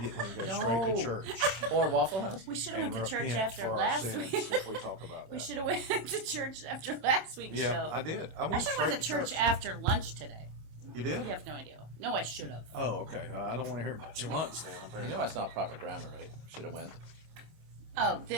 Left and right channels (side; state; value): left; late; 26 ms